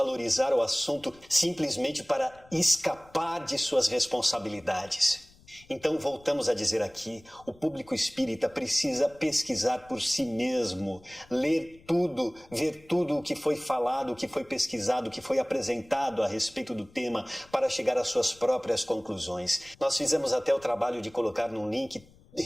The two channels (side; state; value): left; noise; rumble, 27 dB below the sound